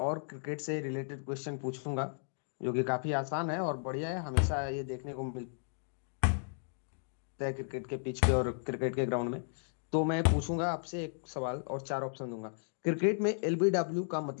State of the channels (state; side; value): silent; right; digital silence